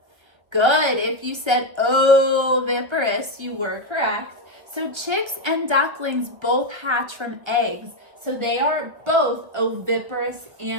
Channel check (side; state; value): left; late; 1.2 ms